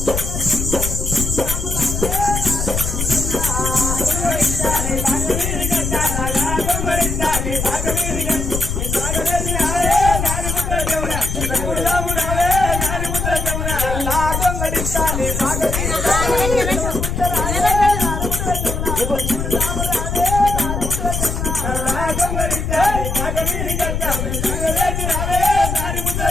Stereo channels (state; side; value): noise; left; rumble, 2 dB below the sound